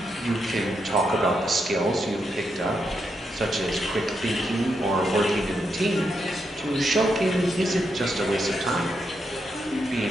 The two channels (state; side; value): normal; both; correlation 0.82